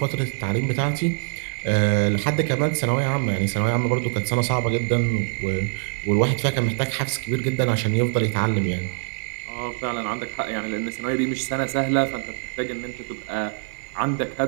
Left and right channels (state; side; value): silent; left; 63 dB below the other